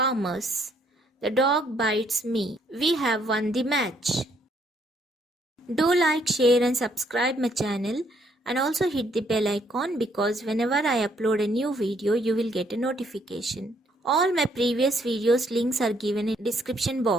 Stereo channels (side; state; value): both; normal; correlation 0.69